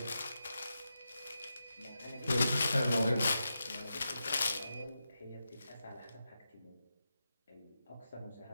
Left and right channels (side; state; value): both; inverted; correlation -0.88